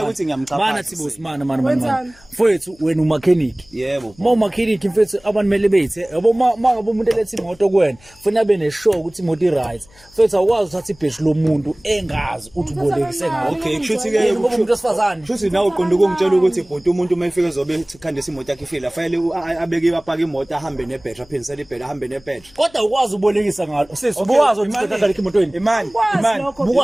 ukuthi ngiyamchapha. mana sibusi mana. Mfethu wena umakheniki. Yebo. Uma umakheniki mfethu abantu mele bethe yabo mangabe umuntu elethe imoto kuwena ufuna abe neshow ukuthi imoto i-right. Mfethu awukwazi uthatha ibhedi lomuntu engazi uthi ubolekise ngayo. Okay, kushuthi ke ngoba umuntu osifazane. Kushuthi nawe uqonda ukungitshela ukuthi bhuti umuntu uma efika ezobe khandisa imoto yakhe ifile afanele abeke apaka imoto ahambe nebhedi aphinisele ibhedi ahambe nebhedi. Kodwa ukwazi ubolekisa ngalo. Sisi ukwazi ukuthi uthatha emotweni. imani.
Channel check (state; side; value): noise; left; hum, 27 dB below the sound